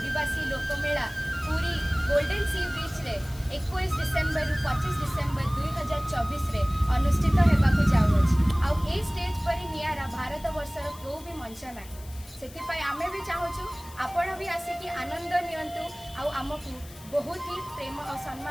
लोकमेला पूरी गोल्डन सी बीच रे 21 डिसेम्बर रु 25 डिसेम्बर 2024 रे अनुष्ठित होगाकू जाऊँगी। आउ ए स्टेज पर नियारा भारत वर्षर क्यों भी मंच ना से आमे भी चाहूँ आपण भी आसिकी आनंद नियंतु आउ आमको बहुत ही प्रेम और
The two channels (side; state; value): left; noise; hiss, 20 dB below the sound